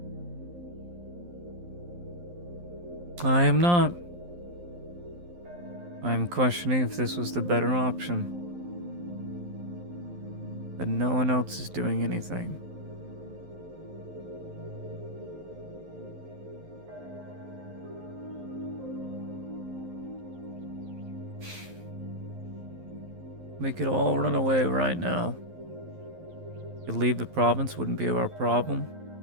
I am not. I am questioning if this was the better option. But no one else is doing anything. We could all run away right now. Could leave the province, wouldn't be our problem.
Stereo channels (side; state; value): left; late; 11 ms